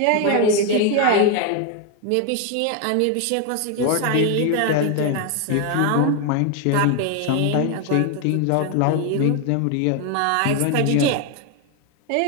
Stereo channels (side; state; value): both; different; correlation 0.01